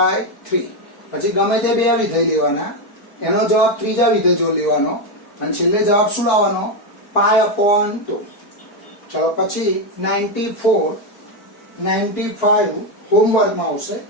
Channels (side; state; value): right; late; 4.5 ms